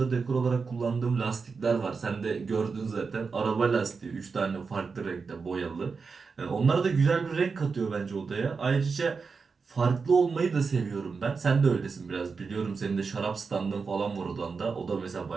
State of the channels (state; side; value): quieter; left; 5.0 dB